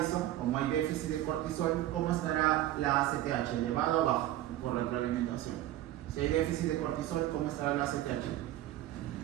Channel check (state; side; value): quieter; left; 14.0 dB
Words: como hay déficit de cortisol, ¿cómo estará la ACTH? ¿Elevado o bajo? Por retroalimentación. Si hay déficit de cortisol, ¿cómo estará la ACTH?